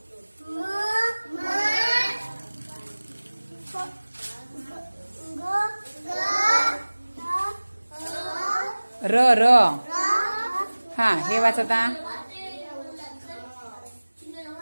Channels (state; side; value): inverted; both; correlation -1.00